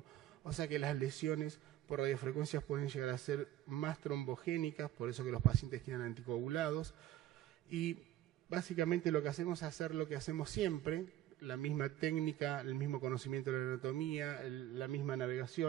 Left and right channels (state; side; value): quieter; left; 13.0 dB